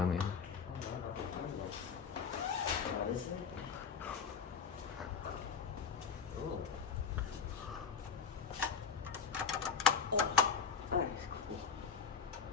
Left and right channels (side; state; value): right; quieter; 6.1 dB